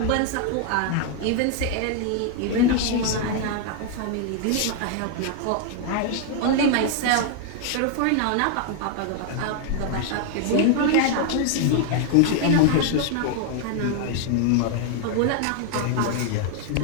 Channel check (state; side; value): different; both; correlation 0.00